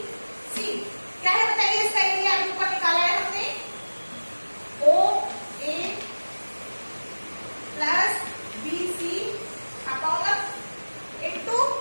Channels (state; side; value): inverted; both; correlation -1.00